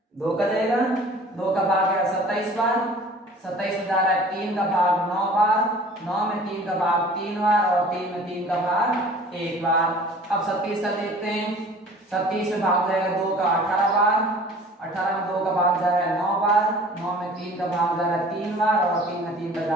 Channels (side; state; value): both; normal; correlation 0.47